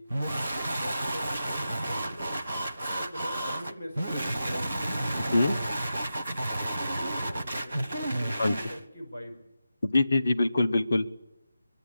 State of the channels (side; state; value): both; inverted; correlation -0.90